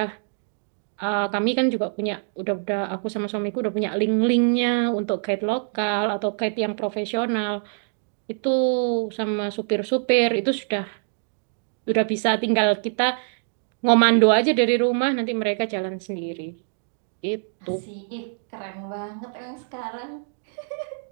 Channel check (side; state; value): left; silent; digital silence